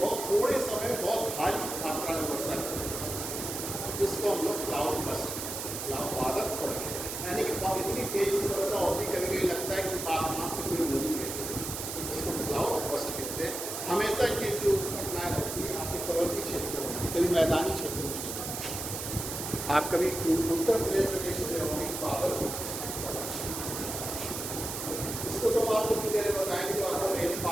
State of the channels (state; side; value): noise; right; hiss, 5 dB below the sound